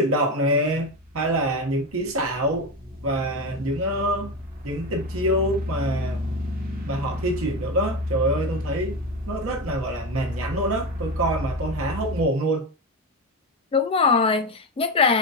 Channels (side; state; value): both; normal; correlation 0.18